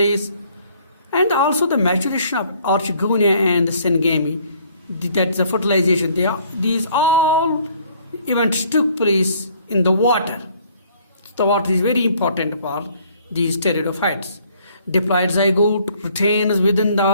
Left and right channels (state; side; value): inverted; both; correlation -0.61